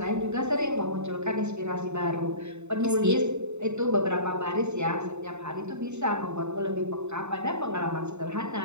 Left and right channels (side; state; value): left; late; 0.82 ms